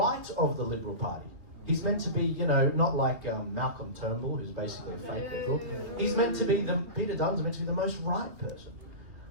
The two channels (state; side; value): late; left; 2.9 ms